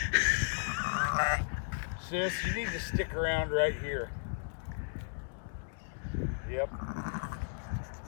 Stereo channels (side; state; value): right; silent; digital silence